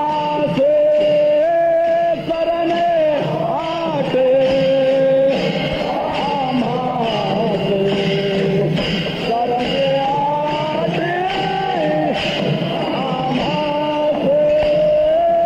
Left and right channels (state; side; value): identical; both; correlation 1.00